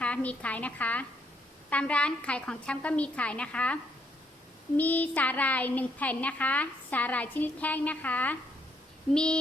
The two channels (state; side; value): normal; both; correlation 0.73